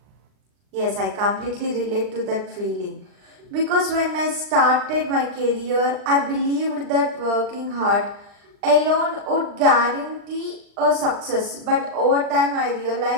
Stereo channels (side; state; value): left; late; 39 ms